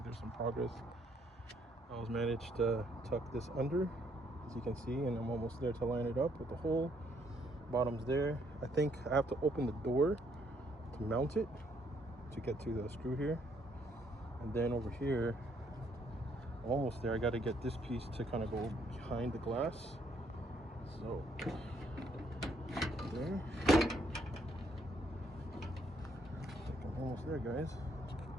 there's some progress. I was managed to tuck this under, as you can see, and I'm almost there to line it up with the hole. Bottom's there. I think I have to open the door to mount it, to get to the screw here. And then over here, I'm almost there. I got to get this piece to kind of go behind the glass. So there. I think I'm almost there, guys.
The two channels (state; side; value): normal; both; correlation 0.69